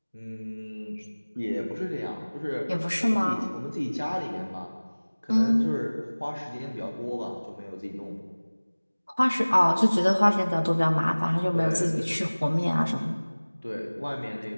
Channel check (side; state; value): both; inverted; correlation -1.00